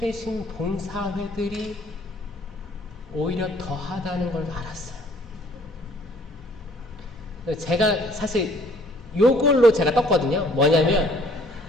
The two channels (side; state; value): both; normal; correlation 0.58